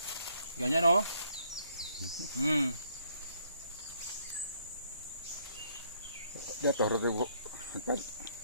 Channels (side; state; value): both; inverted; correlation -0.68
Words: Ganyan, oh. Jatuh ribu.